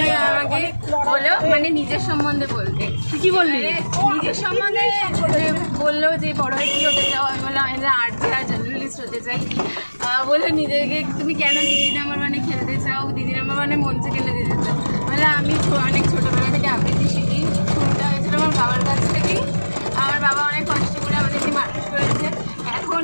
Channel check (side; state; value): both; inverted; correlation -1.00